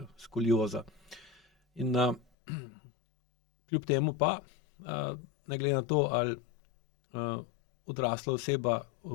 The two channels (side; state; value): right; drops out; at 2.2 s